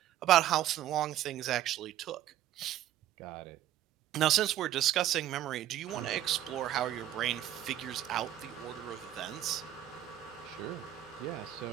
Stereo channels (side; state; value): left; quieter; 12.3 dB